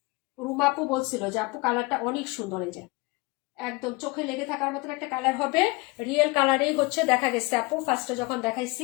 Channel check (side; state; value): right; quieter; 24.9 dB